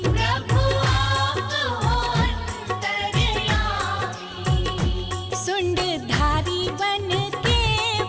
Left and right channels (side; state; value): both; identical; correlation 1.00